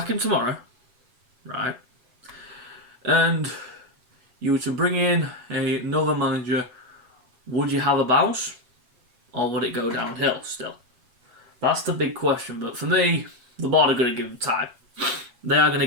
him tomorrow, right? And you were to bring in another manager, would you have a bounce? Or would it go downhill still? That's the big question. But for me, the board are going to give him time. They are going to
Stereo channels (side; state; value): left; late; 8.1 ms